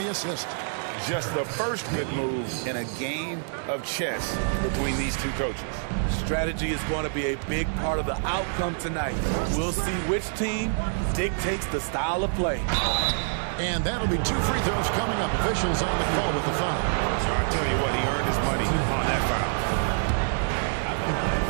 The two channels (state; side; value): silent; left; digital silence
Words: assist. Just the first good move in a game of chess between these two coaches. Strategy is going to be a big part of the outcome tonight. We'll see which team dictates the style of play. And that'll be 2 free throws coming up. Officials on the call with the foul. So I tell you what, he earned his money on that foul.